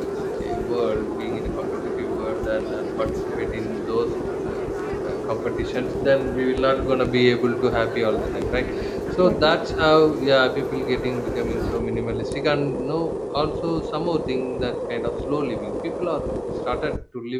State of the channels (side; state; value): both; identical; correlation 1.00